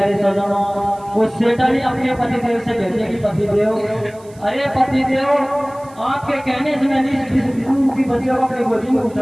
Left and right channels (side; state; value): right; noise; hiss, 27 dB below the sound